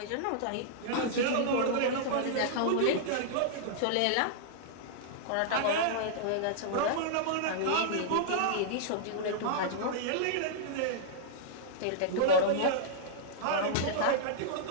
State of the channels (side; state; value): both; different; correlation -0.02